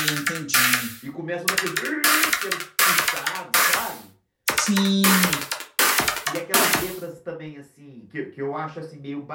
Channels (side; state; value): both; identical; correlation 1.00